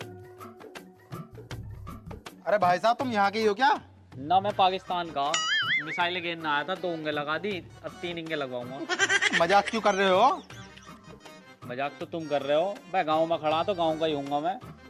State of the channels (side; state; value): both; identical; correlation 1.00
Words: अरे भाई साहब, तुम यहाँ के ही हो क्या? ना, मैं पाकिस्तान का। मिसाइलें गिरने आया था, 2 इंगे लगा दी, अब 3 इंगे लगवाऊंगा। मजाक क्यों कर रहे हो? मजाक तो तुम कर रहे हो। मैं गांव में खड़ा तो गांव का ही हूँगा मैं।